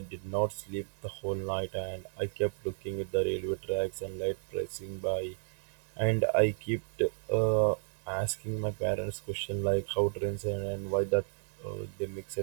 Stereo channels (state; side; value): silent; left; digital silence